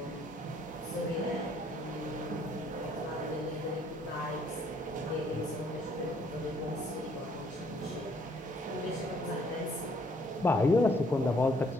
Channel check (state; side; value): normal; both; correlation 0.65